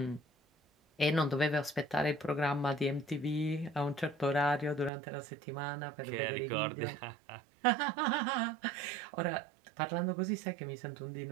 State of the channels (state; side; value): drops out; left; at 4.9 s